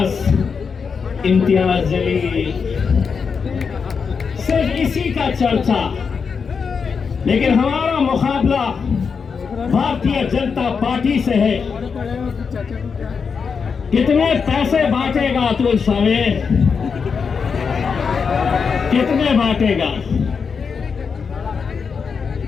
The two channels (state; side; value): quieter; right; 5.8 dB